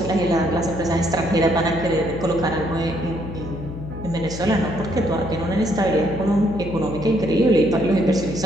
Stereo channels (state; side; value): noise; left; hum, 10 dB below the sound